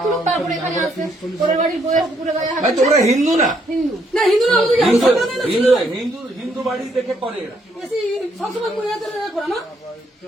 তুলুক, তারপরে এখানে আসে পরের বাড়ির বইয়ের পুরো গায়ে হাত। তোমরা হিন্দু না? হিন্দু না, হিন্দু না, হিন্দু বাড়ি দেখে করে এরা। সবসময় করে না।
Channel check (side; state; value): both; normal; correlation 0.71